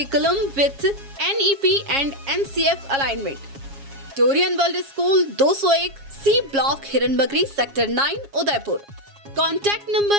with NEP and NCF alignment. Torian world school 201 C block Hiranmagri sector 9 Udaipur. Contact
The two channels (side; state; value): left; late; 7.3 ms